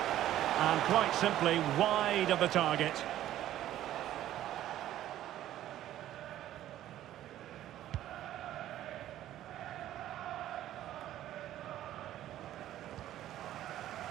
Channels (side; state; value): left; quieter; 12.9 dB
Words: And quite simply wide of the target.